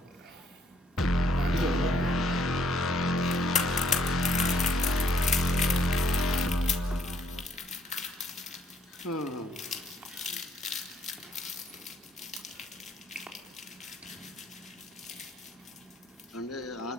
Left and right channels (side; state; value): both; normal; correlation 0.67